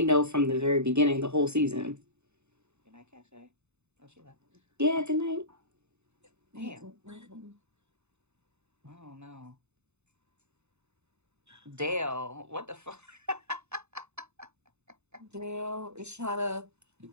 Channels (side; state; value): left; late; 0.82 ms